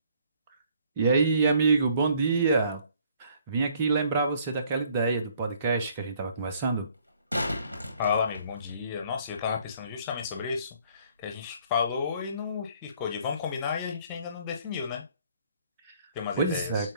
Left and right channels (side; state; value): both; inverted; correlation -0.61